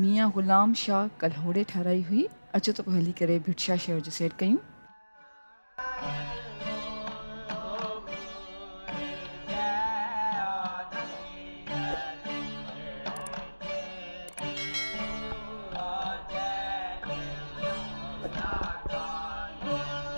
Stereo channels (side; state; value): both; inverted; correlation -1.00